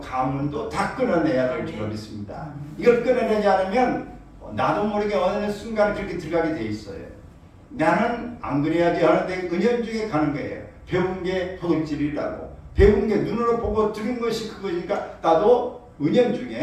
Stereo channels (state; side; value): identical; both; correlation 1.00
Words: 다 끊어내야 될 줄 믿습니다. 이걸 끊어내지 않으면 나도 모르게 어느 순간에 그렇게 들어가게 돼 있어요. 나는 안 그래야지 하는데 은연중에 가는 거예요. 배운 게 도둑질이라고 배운 게 눈으로 보고 들은 것이 그거니까 나도